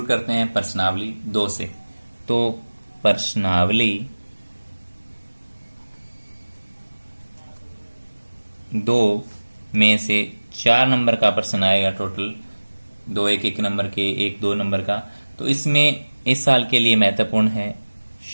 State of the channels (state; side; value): inverted; both; correlation -1.00